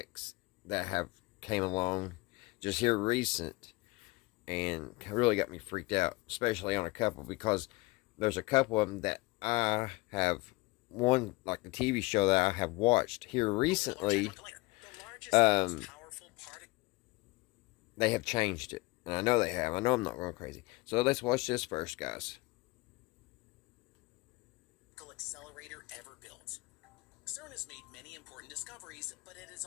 that have came along just here recent, and really got me freaked out, especially on a couple, because there's a couple of them that I have, one like the TV show that I have watched here recently. They have changed it, and I know they have. I know I'm not going crazy. So let's watch this first, guys. Accelerator ever built. CERN has made many important discoveries, but it has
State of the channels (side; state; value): right; quieter; 22.7 dB